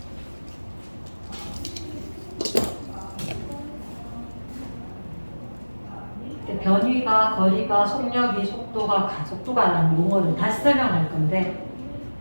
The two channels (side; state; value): both; inverted; correlation -1.00